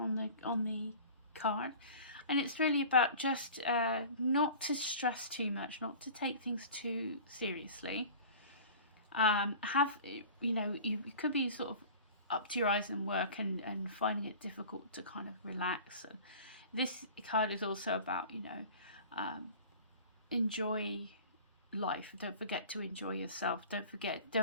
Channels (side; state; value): both; inverted; correlation -0.41